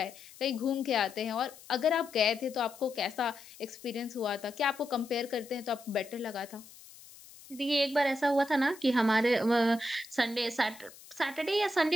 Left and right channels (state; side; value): noise; left; hiss, 20 dB below the sound